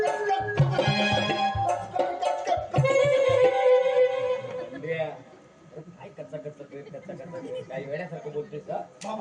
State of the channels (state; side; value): identical; both; correlation 1.00